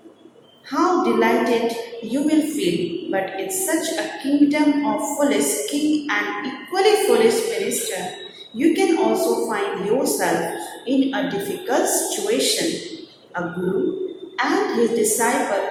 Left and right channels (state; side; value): identical; both; correlation 1.00